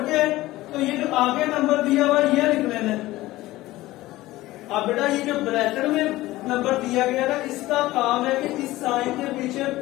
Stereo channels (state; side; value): quieter; right; 17.5 dB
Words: के तो ये जो आगे नंबर दिया हुआ ये लिख लेना है। अब बेटा ये जो ब्रैकेट में नंबर दिया गया ना, इसका काम है कि इस साइन के पीछे